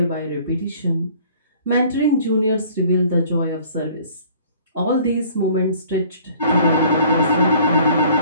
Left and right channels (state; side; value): inverted; both; correlation -0.54